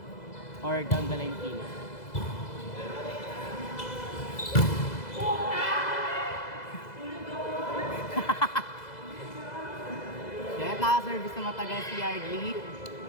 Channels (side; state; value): right; late; 2.0 ms